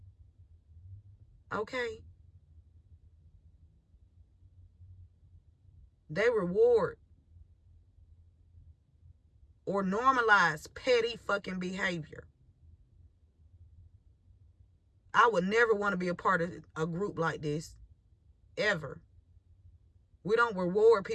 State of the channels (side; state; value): both; identical; correlation 1.00